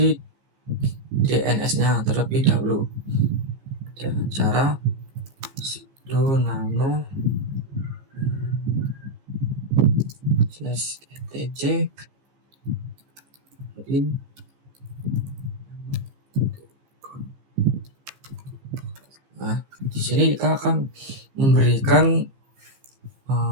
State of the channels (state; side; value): late; left; 15 ms